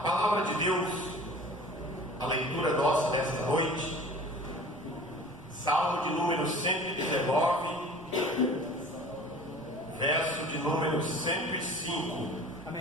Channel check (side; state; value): right; noise; rumble, 22 dB below the sound